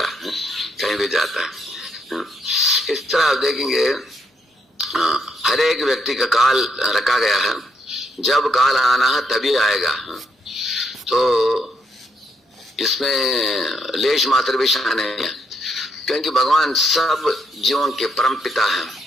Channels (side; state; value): both; normal; correlation 0.76